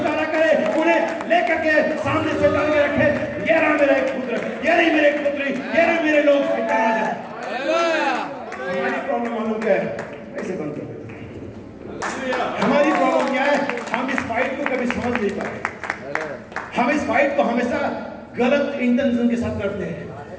करे, उन्हें लेकर के सामने से डाल के रखे। ये रहा मेरा एक पुत्र, ये नहीं मेरे पुत्री, ये रहे मेरे लोग। हमारी प्रॉब्लम मालूम क्या है? ऐसे बंद कर। हमारी प्रॉब्लम क्या है? हम इस फाइट को कभी समझ नहीं पाए। हम इस फाइट को हमेशा गलत इंटेंशन के साथ करते हैं।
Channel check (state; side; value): identical; both; correlation 1.00